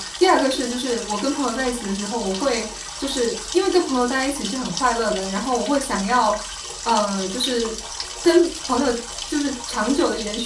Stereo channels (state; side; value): identical; both; correlation 1.00